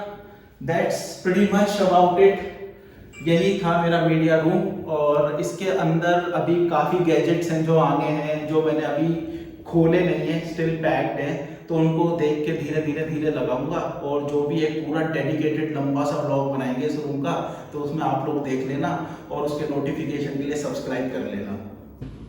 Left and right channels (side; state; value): both; identical; correlation 1.00